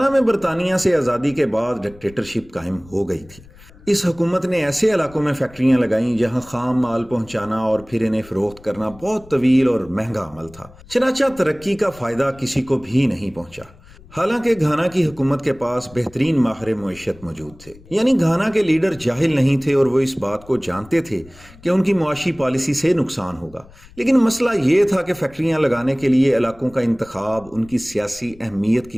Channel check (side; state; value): left; noise; rumble, 23 dB below the sound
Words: میں برطانیہ سے آزادی کے بعد ڈکٹیٹرشپ قائم ہو گئی تھی۔ اس حکومت نے ایسے علاقوں میں فیکٹریاں لگائیں جہاں خام مال پہنچانا اور پھر انہیں فروخت کرنا بہت طویل اور مہنگا عمل تھا، چنانچہ ترقی کا فائدہ کسی کو بھی نہیں پہنچا۔ حالانکہ گھانا کی حکومت کے پاس بہترین ماہر معیشت موجود تھے، یعنی گھانا کے لیڈر جاہل نہیں تھے اور وہ اس بات کو جانتے تھے کہ ان کی معاشی پالیسی سے نقصان ہوگا، لیکن مسئلہ یہ تھا کہ فیکٹریاں لگانے کے لیے علاقوں کا انتخاب ان کی سیاسی اہمیت کی